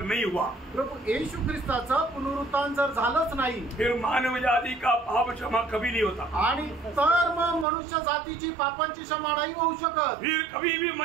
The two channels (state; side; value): drops out; left; at 7.7 s